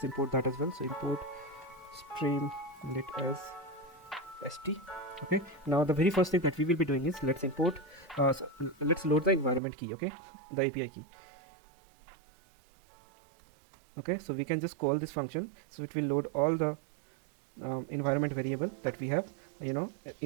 import that as well. So import Streamlit as st. Okay, now the very first thing that we will be doing is let's import let's load the environment key. Okay, the API key. Okay, so we can just call this function, so it will load all the environment variable that we have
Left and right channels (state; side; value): drops out; left; at 9.6 s